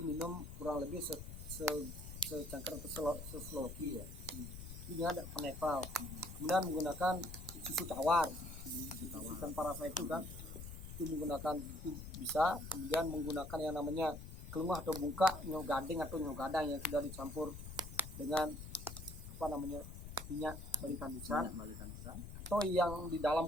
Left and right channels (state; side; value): noise; left; rumble, 10 dB below the sound